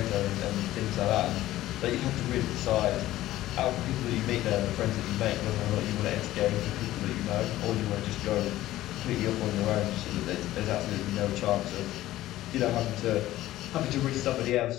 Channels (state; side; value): quieter; right; 15.1 dB